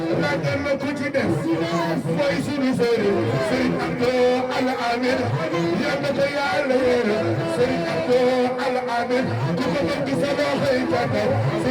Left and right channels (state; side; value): identical; both; correlation 1.00